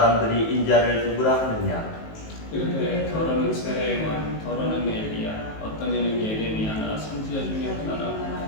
인자를 누구라 하느냐? 이르되 더러는 세례요한, 더러는 엘리야, 어떤 이는 예레미야나 선지자 중에 하나라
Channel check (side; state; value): right; late; 19 ms